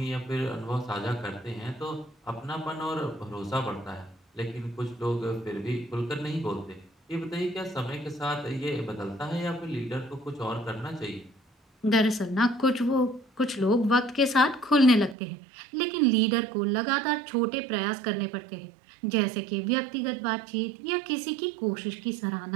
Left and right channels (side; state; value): left; drops out; at 15.2 s